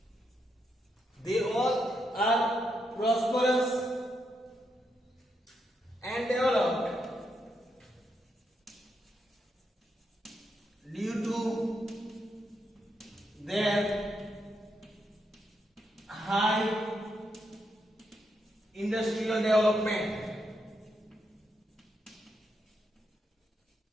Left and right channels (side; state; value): both; normal; correlation 0.81